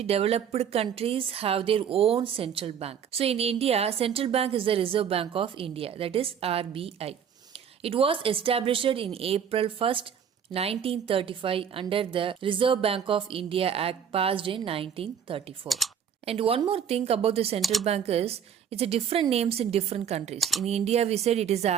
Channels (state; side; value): quieter; left; 8.0 dB